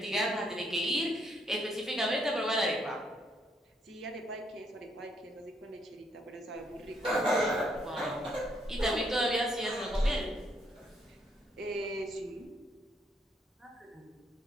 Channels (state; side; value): normal; both; correlation 0.72